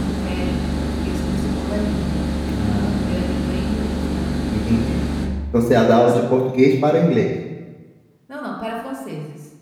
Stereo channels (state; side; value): identical; both; correlation 1.00